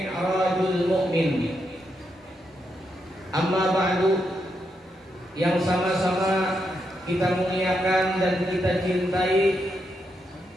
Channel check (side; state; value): both; normal; correlation 0.82